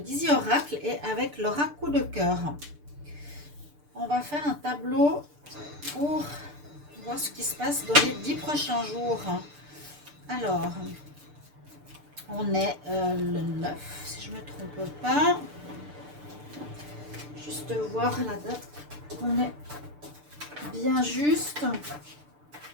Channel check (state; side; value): late; left; 6.8 ms